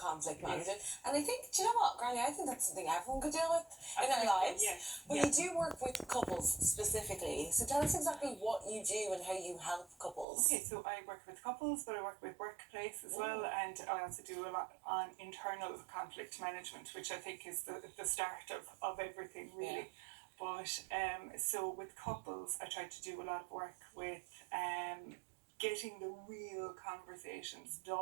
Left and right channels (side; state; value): left; drops out; at 10.2 s